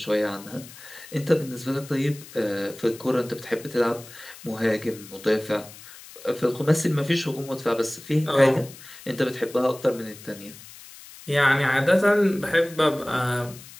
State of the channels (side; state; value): left; noise; hiss, 18 dB below the sound